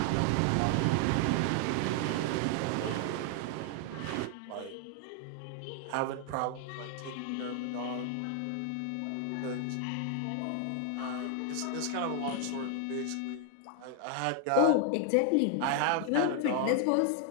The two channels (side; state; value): both; different; correlation 0.00